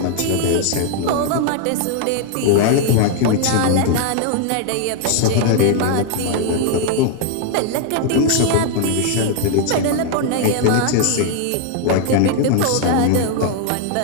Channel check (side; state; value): both; different; correlation 0.00